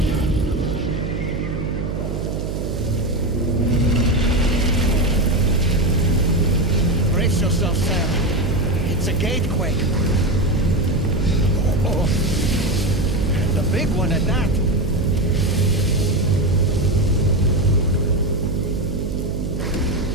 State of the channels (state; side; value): noise; right; hum, 4 dB below the sound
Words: Brace yourself, Sam. It's a gatequake. Oh. And a big one at that.